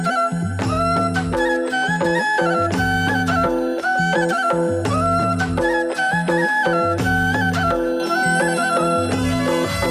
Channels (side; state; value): both; identical; correlation 1.00